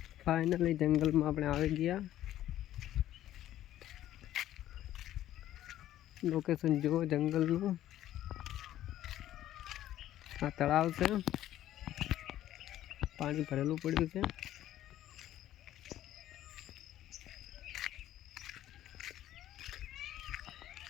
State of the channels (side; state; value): right; quieter; 12.9 dB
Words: ફાઇનલી જંગલમાં આપણે આવી ગયા. લોકેશન જુઓ જંગલનું. આ તળાવ છે, પાણી ભરેલું પડ્યું છે.